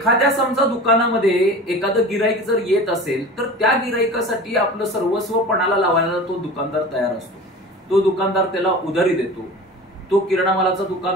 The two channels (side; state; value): both; normal; correlation 0.36